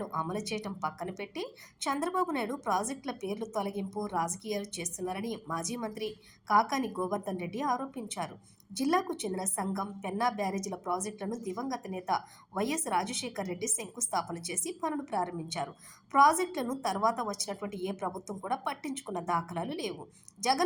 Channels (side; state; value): both; identical; correlation 1.00